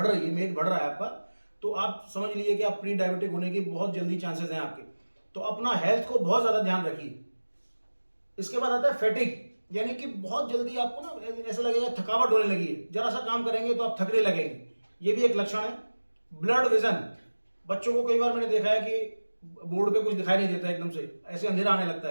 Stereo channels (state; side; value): inverted; both; correlation -1.00